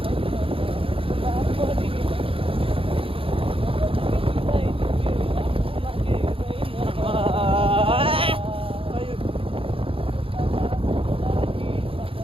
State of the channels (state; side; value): late; left; 0.27 ms